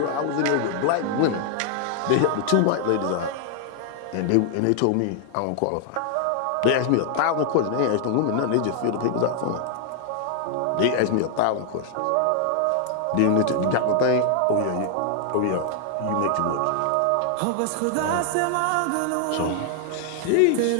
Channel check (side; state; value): both; different; correlation 0.00